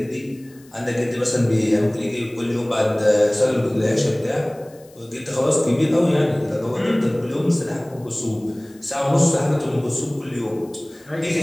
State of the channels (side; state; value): left; noise; hiss, 28 dB below the sound